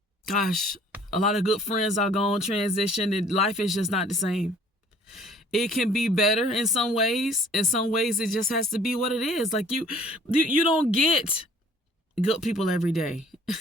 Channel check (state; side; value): normal; both; correlation 0.55